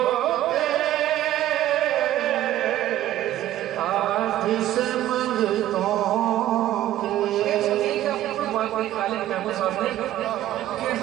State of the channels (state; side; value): quieter; left; 13.5 dB